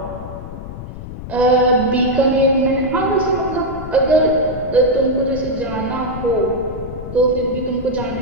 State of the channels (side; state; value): left; noise; rumble, 11 dB below the sound